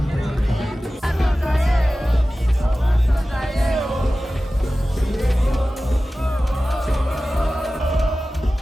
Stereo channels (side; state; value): both; normal; correlation 0.96